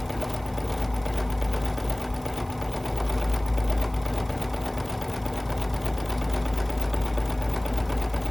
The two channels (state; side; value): noise; right; hiss, 23 dB below the sound